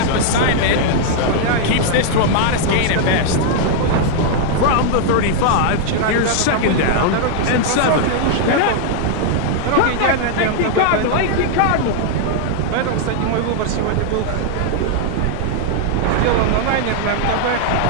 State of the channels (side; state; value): both; different; correlation -0.01